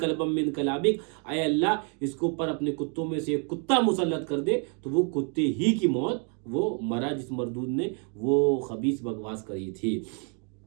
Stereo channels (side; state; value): left; quieter; 39.7 dB